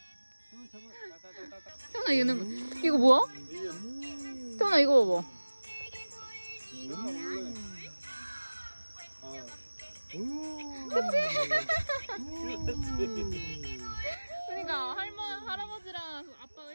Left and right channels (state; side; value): inverted; both; correlation -1.00